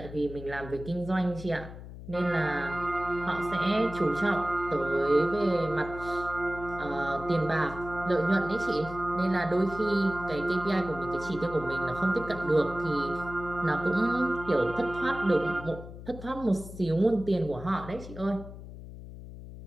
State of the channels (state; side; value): noise; left; hum, 13 dB below the sound